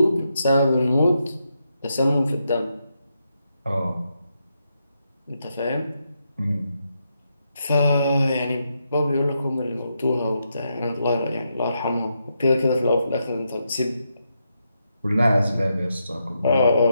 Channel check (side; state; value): both; inverted; correlation -0.83